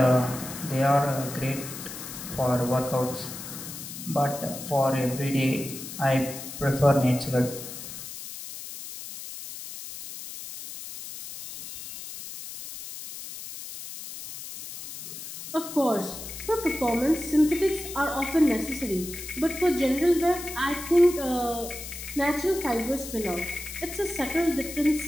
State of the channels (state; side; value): noise; left; hiss, 10 dB below the sound